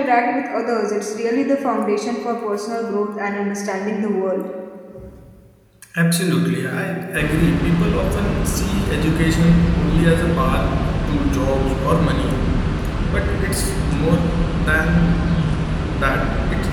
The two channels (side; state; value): both; identical; correlation 1.00